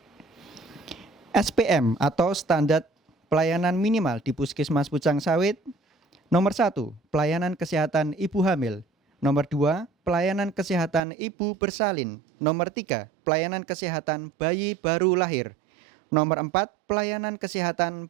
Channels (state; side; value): drops out; left; at 11.0 s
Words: SPM atau standar pelayanan minimal di Puskesmas Pucang Sawit. Nomor 1, pelayanan kesehatan ibu hamil. Nomor 2, pelayanan kesehatan ibu bersalin. Nomor 3, pelayanan kesehatan bayi baru lahir. Nomor 4, pelayanan kesehatan